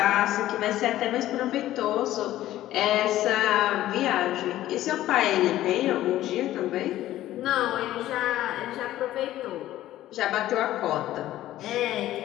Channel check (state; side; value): quieter; right; 14.2 dB